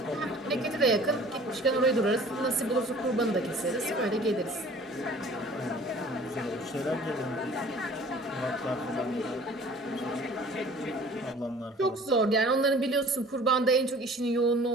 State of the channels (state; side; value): normal; both; correlation 0.48